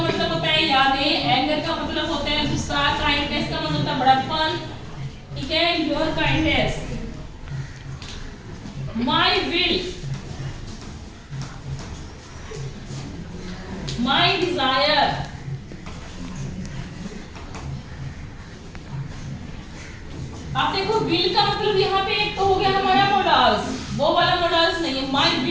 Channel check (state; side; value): identical; both; correlation 1.00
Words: होता है यादें, एंगर का मतलब होता है गुस्सा, काइंडनेस का मतलब होता है बड़प्पन। ठीक है, your kindness. My will, my desire, आप देखो विल का मतलब यहाँ पे एक तो हो गया हमारा मोडल्स, वो वाला मोडल्स नहीं है। माई